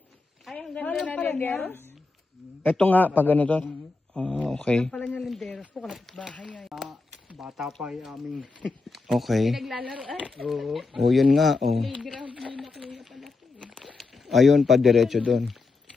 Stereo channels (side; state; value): right; quieter; 3.8 dB